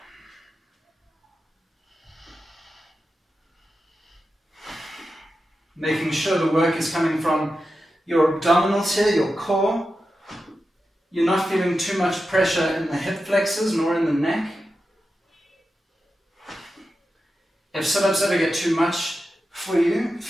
Making sure the work is coming from your abdominals here, your core. You're not feeling too much pressure in the hip flexors nor in the neck. If sit-ups ever get too much for you,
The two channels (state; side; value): normal; both; correlation 0.91